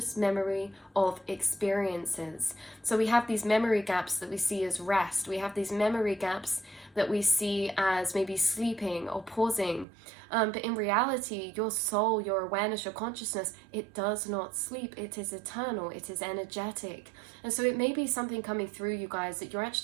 memory of experiences. So we have these memory gaps that we see as rest. We have these memory gaps that we see as maybe sleeping or pausing. But in reality, your soul, your awareness, your consciousness, it does not sleep. It is eternal. It is energetic. And so it may be something coming through you guys that you're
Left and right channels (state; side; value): drops out; left; at 9.9 s